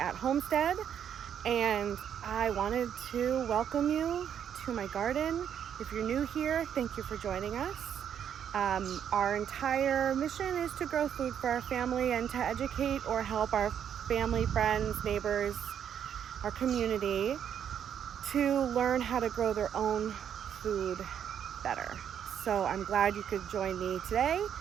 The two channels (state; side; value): quieter; left; 8.9 dB